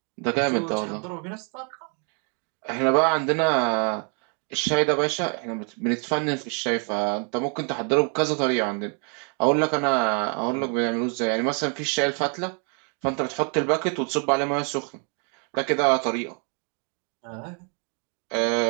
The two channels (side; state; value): left; quieter; 39.6 dB